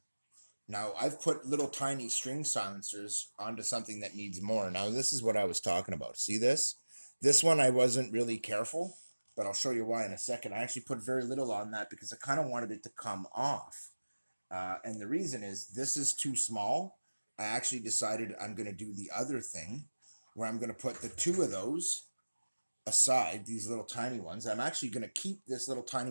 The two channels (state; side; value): inverted; both; correlation -1.00